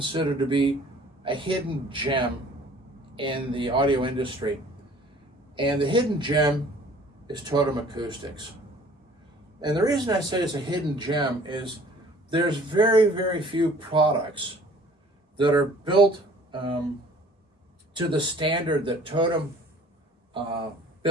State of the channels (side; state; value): both; normal; correlation 0.52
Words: to be a hidden gem in the audio industry. And the hidden gem is Totem Acoustics. And the reason I say it's a hidden gem is there's very, very few products that are built to the standard that Totem